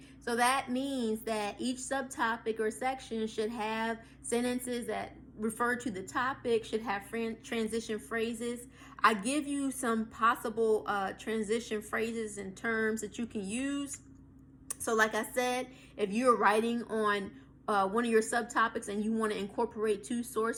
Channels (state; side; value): identical; both; correlation 1.00